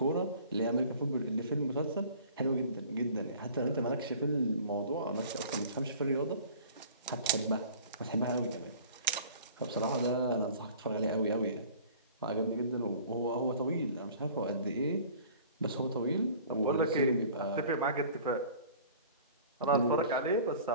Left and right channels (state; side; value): inverted; both; correlation -0.47